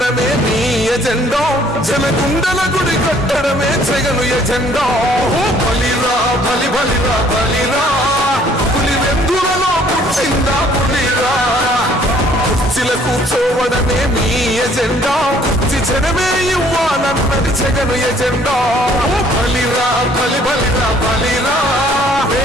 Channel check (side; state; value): both; normal; correlation 0.60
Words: మీ ఎజెండా జనగుండల గుడి కట్టడమే జగను ఎజెండా బలిరా బలి బలిరా బలిరా పులి వెందులలో పుట్టిందా పులిరా కుర్చీల కూర్చోవడమే మీ ఎజెండా కుర్చీ జనమే ఇవ్వాలన్నది జగను ఎజెండా బలిరా బలి బలిరా బలిరా